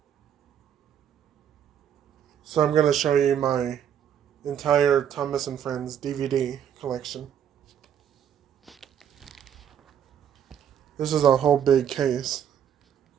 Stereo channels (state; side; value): quieter; left; 9.1 dB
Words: So I'm gonna show you my entire Thomas and Friends DVD collection. This is a whole big case,